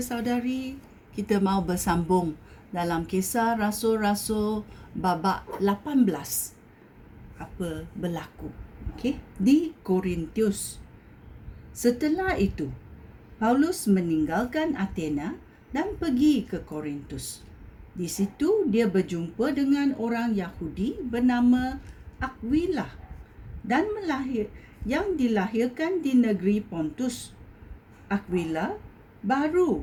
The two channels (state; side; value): identical; both; correlation 1.00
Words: Kita mau bersambung dalam kisah Rasul-Rasul babak 18. Apa berlaku? Okey, di Korintus. Setelah itu, Paulus meninggalkan Athena dan pergi ke Korintus. Di situ dia berjumpa dengan orang Yahudi bernama Aquila dan yang dilahirkan di negeri Pontus. Aquila